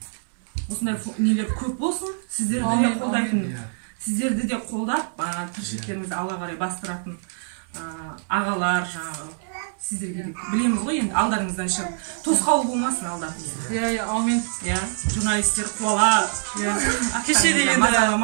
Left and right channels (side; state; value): left; silent; digital silence